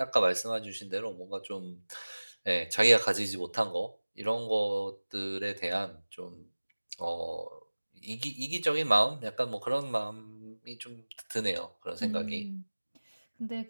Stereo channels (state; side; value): inverted; both; correlation -1.00